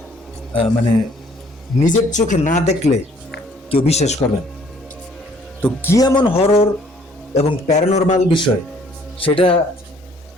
মানে নিজের চোখে না দেখলে কেউ বিশ্বাস করবেন। তো কি এমন হরর এবং প্যারানরমাল বিষয়, সেটা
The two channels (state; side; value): normal; both; correlation 0.60